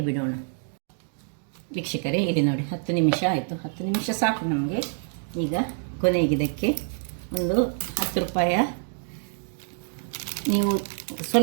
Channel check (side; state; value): left; silent; 61 dB below the other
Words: ಬಿಡೋಣ. ವೀಕ್ಷಕರೇ, ಇಲ್ಲಿ ನೋಡಿ 10 ನಿಮಿಷ ಆಯಿತು. 10 ನಿಮಿಷ ಸಾಕು ನಮಗೆ. ಈಗ ಕೊನೆಗೆ ಇದಕ್ಕೆ ಒಂದು 10 ರೂಪಾಯ, ನೀವು